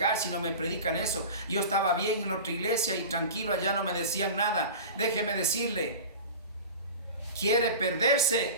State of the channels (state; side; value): inverted; both; correlation -0.33